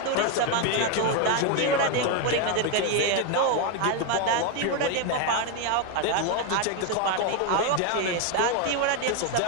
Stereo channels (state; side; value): different; both; correlation 0.01